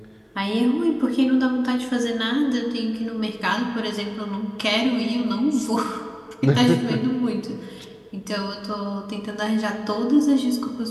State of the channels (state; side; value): identical; both; correlation 1.00